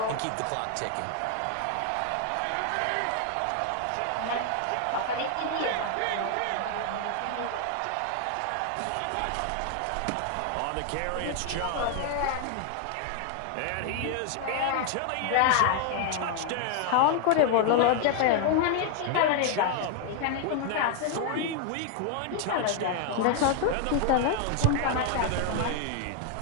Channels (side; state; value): both; different; correlation 0.00